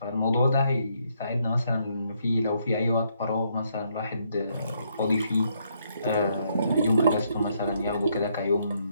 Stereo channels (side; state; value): both; inverted; correlation -0.74